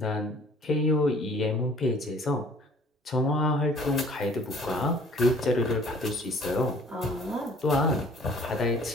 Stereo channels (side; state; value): both; normal; correlation 0.53